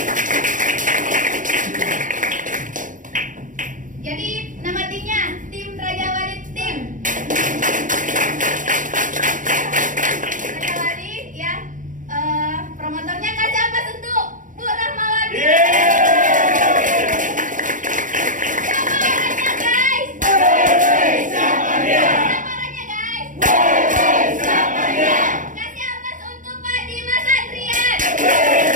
Jadi nama timnya tim Raja Wali Tim. Promotornya kasih apa untuk Bu Rahmawati? Siapa orangnya guys? Siapa orangnya guys? Kasih apa untuk Pak Dimas Adrian?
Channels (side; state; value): left; late; 0.38 ms